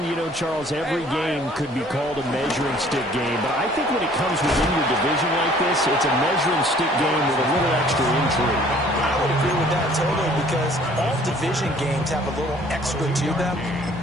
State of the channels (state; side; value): normal; both; correlation 0.56